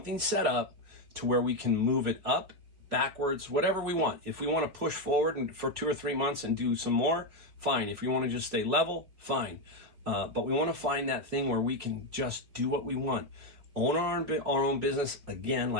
set up to where we can move it up, backwards, whatever we want. If we want to push forward for 2 or 3 months and do some more, fine. If we want to just stay level, fine. But we want to find that thing where we can just do what we want. Own our own business, again,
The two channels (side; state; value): left; late; 4.3 ms